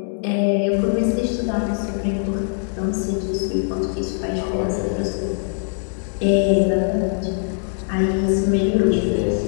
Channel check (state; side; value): silent; right; 65 dB below the other